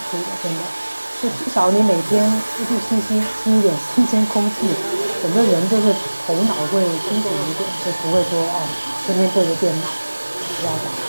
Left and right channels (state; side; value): inverted; both; correlation -1.00